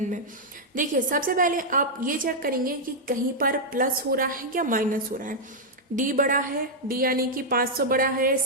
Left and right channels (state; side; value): normal; both; correlation -0.04